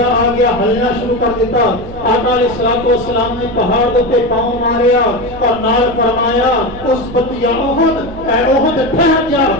آ گیا، ہلنا شروع کر دیتا، آقا علیہ الصلوۃ والسلام نے پہاڑ دے اوپر پاؤں ماریا اور نال فرمایا اس بتیا احد اے احد ٹھہر جا،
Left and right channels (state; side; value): noise; right; hum, 15 dB below the sound